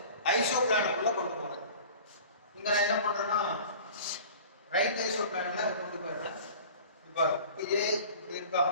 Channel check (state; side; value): inverted; both; correlation -0.42